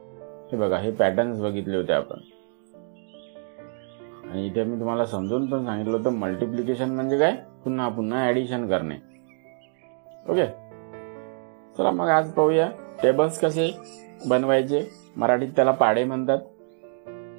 हे बघा, हे पॅटर्न्स बघितले होते आपण. आणि इथे मी तुम्हाला समजून पण सांगितलं होतं मल्टिप्लिकेशन म्हणजे काय, पुन्हा पुन्हा ऍडिशन करणे. ओके, चला मग आज पाहूया टेबल्स कसे बनवायचे. मराठीत त्याला पाढे म्हणतात.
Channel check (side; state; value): left; silent; 61 dB below the other